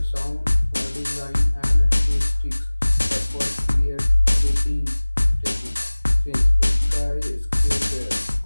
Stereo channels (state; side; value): inverted; both; correlation -1.00